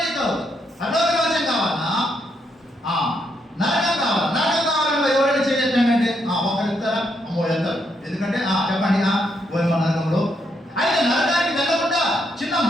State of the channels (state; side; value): normal; both; correlation 0.77